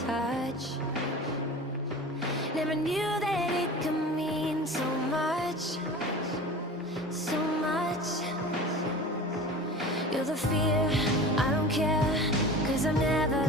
touch. Never knew that it could mean so much, so much. You're the fear, I don't care, 'cause I've never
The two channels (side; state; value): both; normal; correlation 0.36